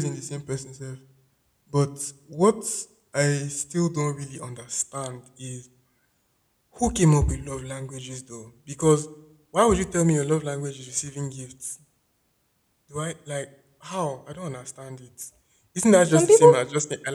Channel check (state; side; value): identical; both; correlation 1.00